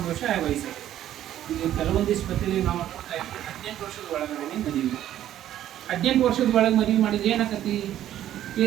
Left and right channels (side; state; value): left; quieter; 12.0 dB